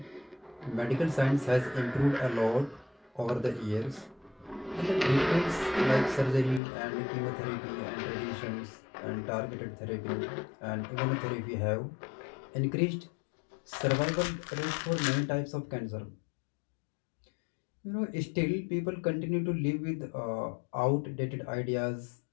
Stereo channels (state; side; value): drops out; right; at 6.6 s